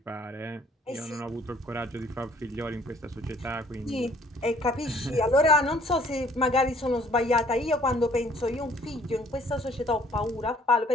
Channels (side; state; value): both; normal; correlation 0.59